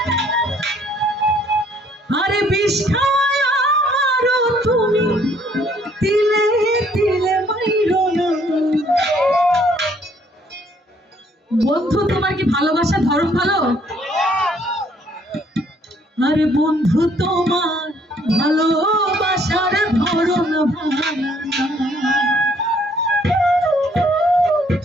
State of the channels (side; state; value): both; normal; correlation 0.64